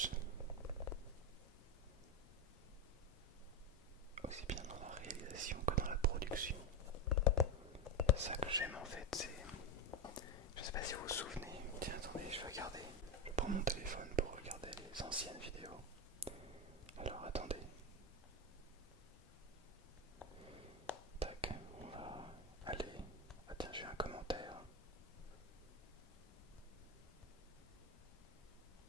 Aussi bien dans la réalisation que dans la production. C'est ça que j'aime en fait, c'est... Je sais pas si vous vous souvenez, tiens attendez, je vais regarder. Je prends mon téléphone pour regarder les anciennes vidéos. Alors attendez. Tac, on va aller... Ah tiens, j'ai un commentaire.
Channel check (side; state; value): both; normal; correlation 0.10